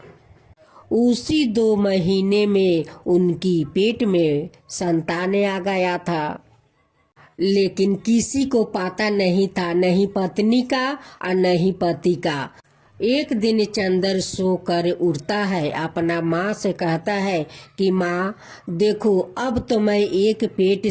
उसी 2 महीने में उनकी पेट में संतान आ गया था, लेकिन किसी को पता नहीं था, नहीं पत्नी का और नहीं पति का। एक दिन चंदर सोकर उठता है, अपना माँ से कहता है कि माँ देखो, अब तो मैं एक पेट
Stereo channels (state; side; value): identical; both; correlation 1.00